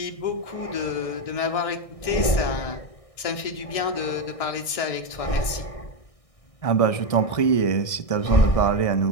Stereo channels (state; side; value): late; right; 1.6 ms